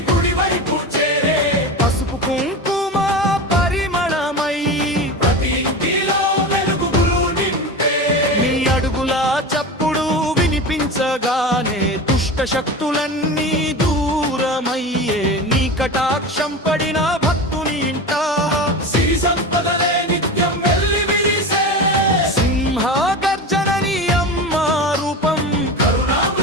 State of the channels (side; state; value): both; normal; correlation 0.27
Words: గుడివైపు చేరే, పసుపు కుంకుమ పరిమళమై ప్రతి ఇంటిలో వెలుగులు నింపే. నీ అడుగుల చప్పుడు వినిపించగానే దుష్ట శక్తులన్నీ దూరమయ్యే, నీ కటాక్షం పడిన భక్తుని ఇంట సిరి సంపదలే నిత్యం వెల్లి విరిసే. సింహ గర్జనని అమ్మ రూపం,